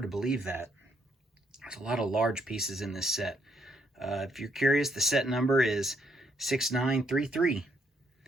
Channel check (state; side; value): normal; both; correlation 0.72